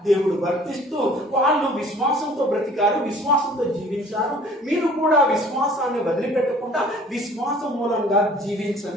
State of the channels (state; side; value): normal; both; correlation 0.51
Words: దేవుడు వర్తిస్తూ వాళ్ళు విశ్వాసంతో బ్రతికారు, విశ్వాసంతో జీవించారు. మీరు కూడా విశ్వాసాన్ని వదిలిపెట్టకుండా విశ్వాసం మూలంగా